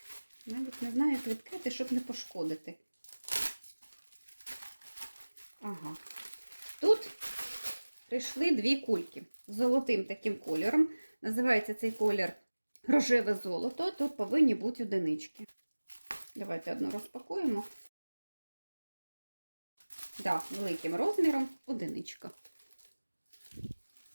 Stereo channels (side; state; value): both; inverted; correlation -1.00